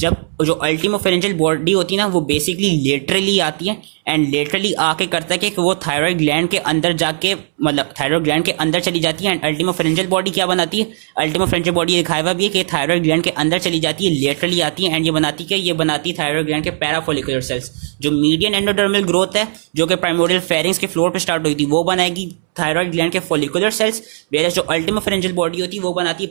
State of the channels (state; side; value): silent; left; 68 dB below the other